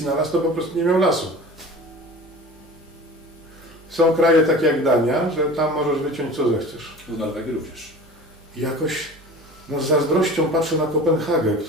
to po prostu nie miał lasu. Są kraje takie jak Dania, że tam możesz wyciąć co zechcesz. W Norwegii również. I jakoś z zazdrością patrzę na Kopenhagę,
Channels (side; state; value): right; noise; hum, 25 dB below the sound